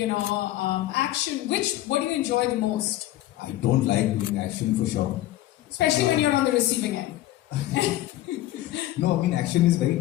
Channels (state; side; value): quieter; right; 15.1 dB